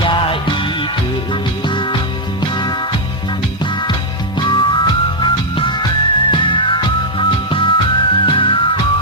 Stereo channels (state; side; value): normal; both; correlation -0.03